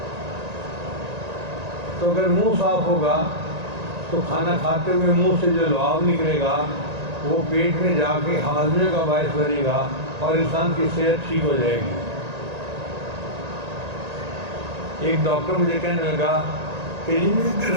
تو اگر منہ صاف ہوگا تو کھانا کھاتے ہوئے منہ سے جو لعاب نکلے گا وہ پیٹ میں جا کے ہاضمے کا باعث بنے گا اور انسان کی صحت ٹھیک ہو جائے گی. ایک ڈاکٹر مجھے کہنے لگا کہ جی میں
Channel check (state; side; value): late; left; 1.9 ms